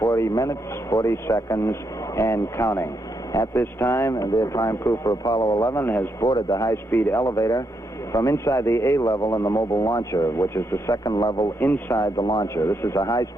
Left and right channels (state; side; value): normal; both; correlation 0.79